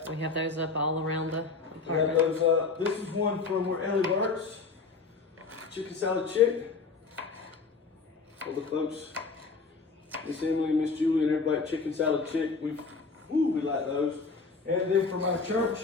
We have those up all around the We have apartment. those up. This is one from where Ellie works. Chicken salad chick. All the folks, Miss Emily, Miss Julie, and everybody at Chicken Salad Chick. We like those. And then from our church,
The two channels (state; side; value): quieter; right; 4.4 dB